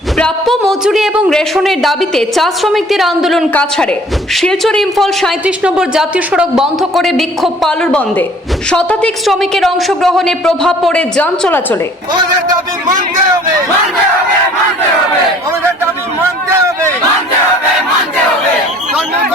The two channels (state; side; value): normal; both; correlation 0.53